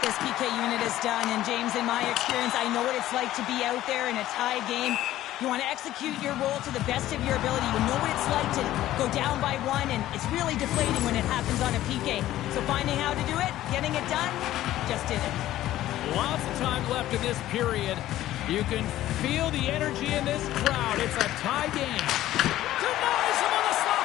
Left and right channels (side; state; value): right; quieter; 14.2 dB